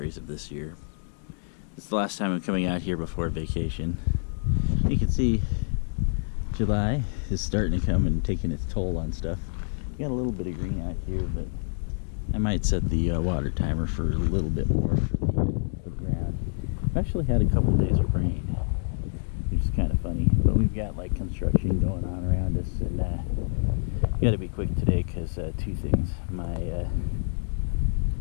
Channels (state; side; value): silent; right; digital silence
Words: of this year. It's the last time I'm coming out here before vacation. You can see July is starting to come and taking its toll on stuff. Got a little bit of green out here, but I might set the water timer for a little bit more for the ground. I've actually had a couple days of rain, which is kind of funny, but we've got like construction going on around us, and got to be quick today because two things.